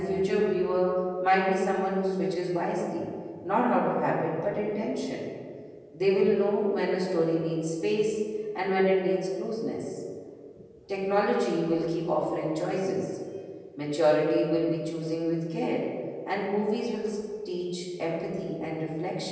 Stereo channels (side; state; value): both; identical; correlation 1.00